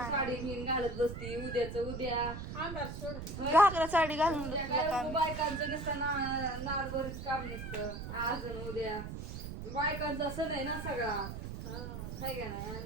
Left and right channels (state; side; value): noise; right; rumble, 7 dB below the sound